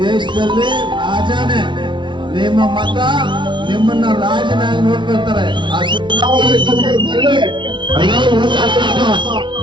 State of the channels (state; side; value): late; left; 0.23 ms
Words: ದೇಶದಲ್ಲಿ ರಾಜನೇ. ನಿಮ್ಮ ಮತ ನಿಮ್ಮನ್ನ ರಾಜನಾಗಿ ನೋಡ್ಕೊಳ್ತಾರೆ.